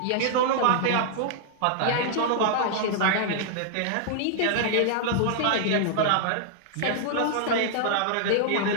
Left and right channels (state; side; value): different; both; correlation -0.01